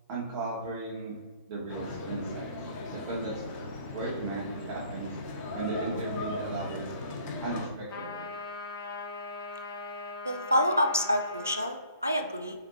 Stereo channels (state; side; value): inverted; both; correlation -0.55